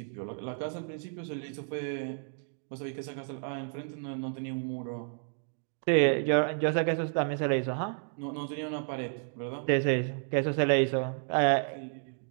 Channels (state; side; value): silent; left; 57 dB below the other